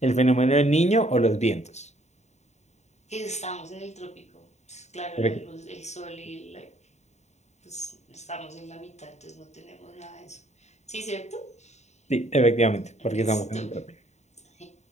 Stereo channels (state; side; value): late; right; 0.33 ms